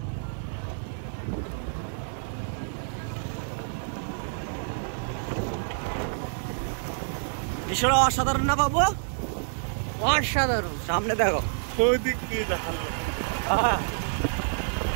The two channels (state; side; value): silent; left; digital silence